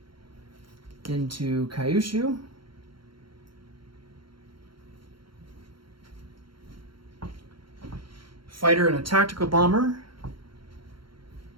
into Kyushu. Fighter and a tactical bomber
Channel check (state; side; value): late; left; 0.73 ms